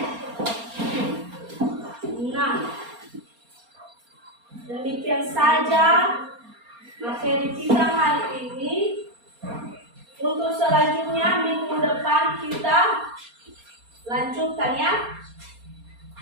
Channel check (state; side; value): late; left; 4.3 ms